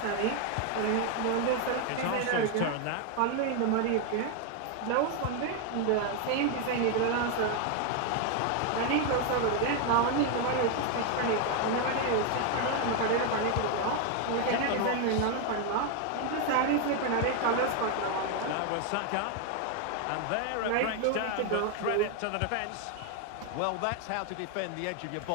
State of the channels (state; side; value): different; both; correlation 0.01